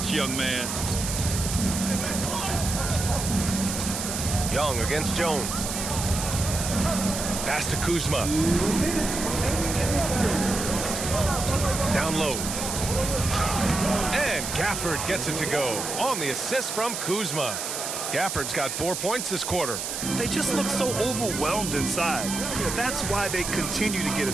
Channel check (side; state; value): right; noise; hiss, 4 dB below the sound